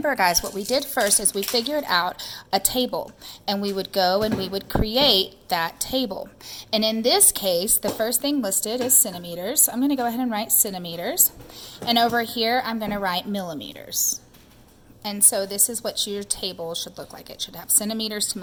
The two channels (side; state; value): both; identical; correlation 1.00